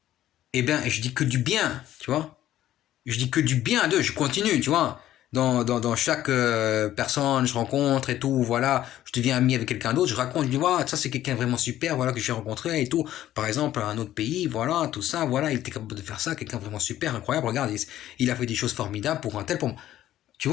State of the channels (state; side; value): quieter; right; 13.0 dB